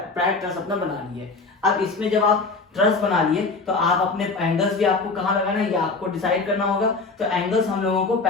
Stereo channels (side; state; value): right; quieter; 3.9 dB